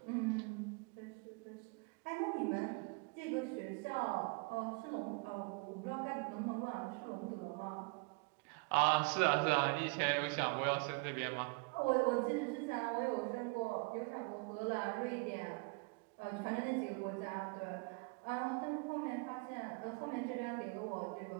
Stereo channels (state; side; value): quieter; left; 31.6 dB